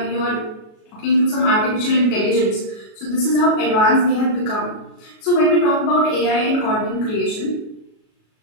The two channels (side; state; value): right; late; 37 ms